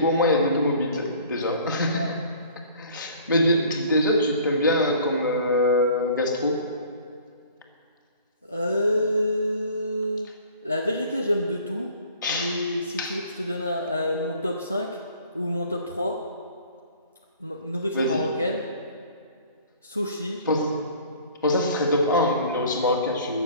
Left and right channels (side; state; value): both; inverted; correlation -0.51